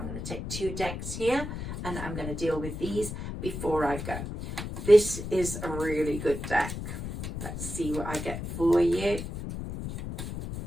going to take 2 decks here, and I'm going to deal with these before I go. This is a really good deck. Let's see what I get for you.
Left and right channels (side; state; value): left; noise; rumble, 6 dB below the sound